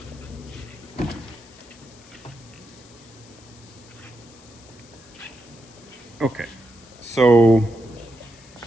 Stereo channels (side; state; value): left; noise; hiss, 23 dB below the sound